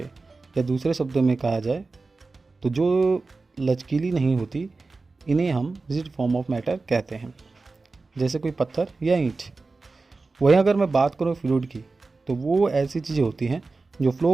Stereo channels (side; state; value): left; quieter; 3.8 dB